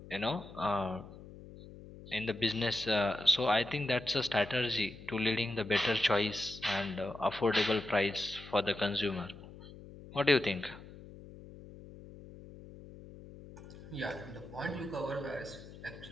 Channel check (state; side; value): noise; left; hum, 16 dB below the sound